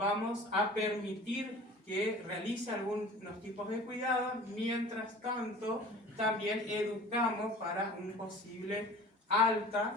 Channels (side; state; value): both; normal; correlation 0.43